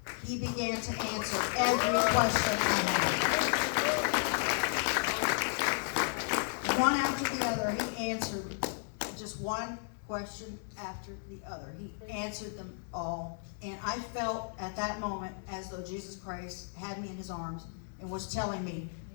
he began to answer every question I had. One after the other, he answered just one question after the other. He answered them all. And I felt at that moment as though Jesus Christ had me in his arms and was telling me,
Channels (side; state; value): right; silent; 55 dB below the other